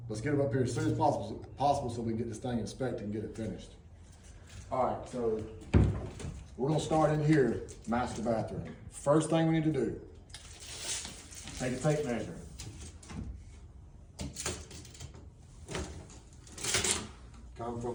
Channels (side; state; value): both; identical; correlation 1.00